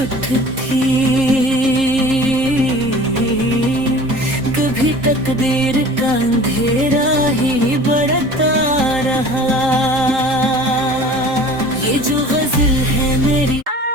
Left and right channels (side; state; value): left; late; 3.8 ms